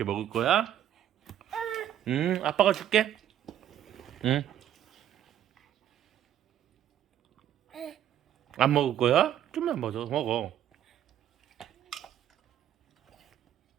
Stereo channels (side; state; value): left; quieter; 11.0 dB